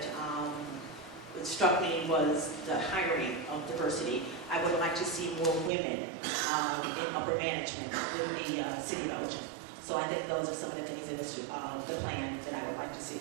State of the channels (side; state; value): left; drops out; at 5.7 s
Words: struck me was the hiring of diversity. I would like to see more women in upper management in the city of Elgin. So I think those are some of the things in the plan that I would like to see.